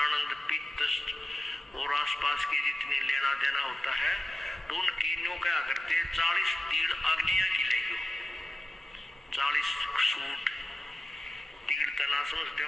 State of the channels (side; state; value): both; normal; correlation 0.92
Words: पित्त और आसपास के जितनी लेना देना होता है, तो उनकी न्यू क्या करते, 40 तीड़ अग्निया की लेगी, 40 सूट तीड़ तना समझते